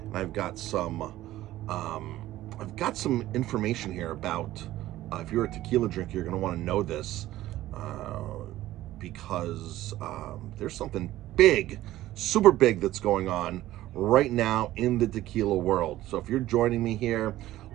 I've got some information here about if you're a tequila drinker, you're going to want to know this because there's something big, super big that's going on right now in the tequila world. So if you're joining me here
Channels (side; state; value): left; quieter; 15.0 dB